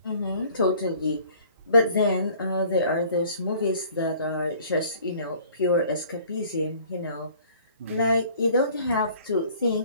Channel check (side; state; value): both; inverted; correlation -0.54